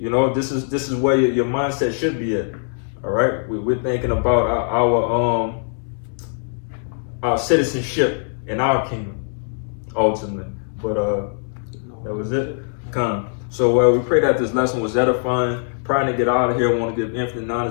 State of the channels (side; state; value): right; silent; 65 dB below the other